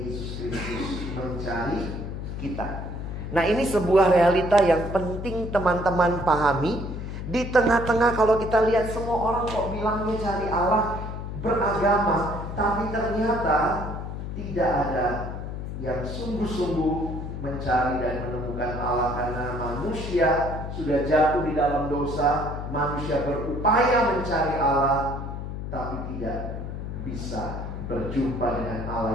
Yesus Kristus mencari kita. Nah, ini sebuah realita yang penting teman-teman pahami. Di tengah-tengah kalau kita lihat semua orang kok bilangnya cari Allah, beragama, tapi ternyata tidak ada yang sungguh-sungguh mencari dan menemukan Allah. Karena manusia sudah jatuh di dalam dosa, manusia berupaya mencari Allah, tapi tidak bisa berjumpa dengan Allah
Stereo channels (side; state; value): left; noise; hum, 6 dB below the sound